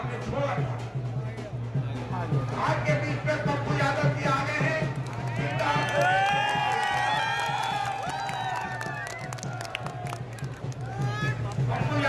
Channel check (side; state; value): both; identical; correlation 1.00